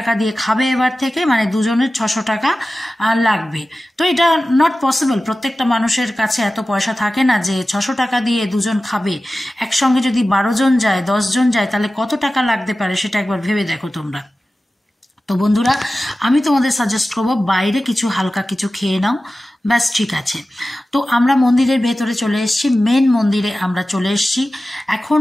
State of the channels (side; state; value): both; normal; correlation 0.95